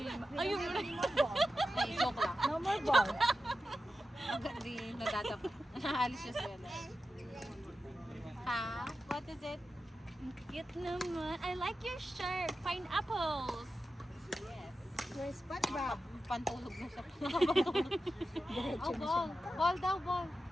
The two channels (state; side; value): normal; both; correlation 0.92